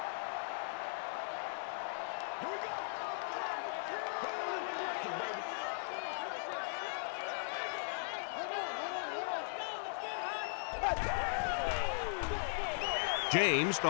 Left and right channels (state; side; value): silent; right; digital silence